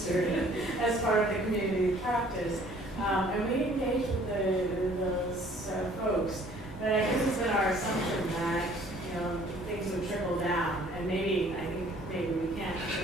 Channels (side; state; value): both; normal; correlation 0.56